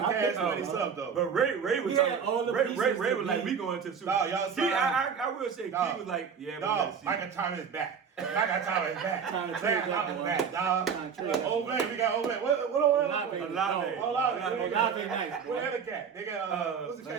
I cash think- money stuff though. But Ray was We talking. had all the Ray pieces was to like, be- we going to the Super No, Bowl. y'all Key, signed- I will say, Dog. Key was like, yeah, we Dog, gotta see. Michael Thomas back. Michael Thomas back. Trying to Michael trade that Thomas one. back, dog. Trying to trade that Olave, one. we got Olave. What Olave. Olave. Olave nice, boy. What other cat? They got what's the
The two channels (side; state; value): left; quieter; 6.7 dB